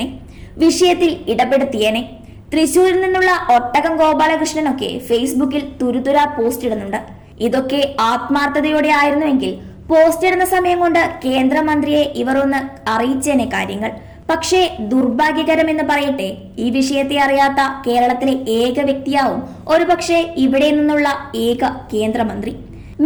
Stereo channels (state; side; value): identical; both; correlation 1.00